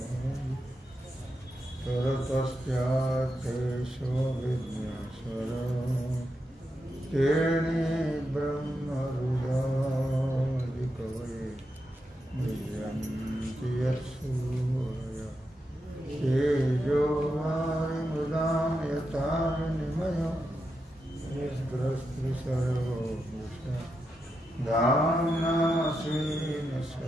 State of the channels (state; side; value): normal; both; correlation 0.86